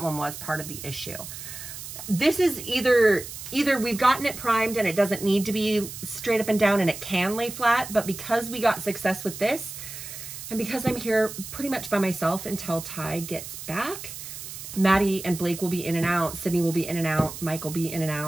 one was part of the issue. This is either we've gotten it primed and it doesn't need to be straight up and down and it can lay flat, but because we got success with this, and because I'm here pretty much by myself until Ty gets back, Maddie and Blake will be in and out, Sydney will be in and out, Mike will be in and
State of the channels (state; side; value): noise; right; hiss, 10 dB below the sound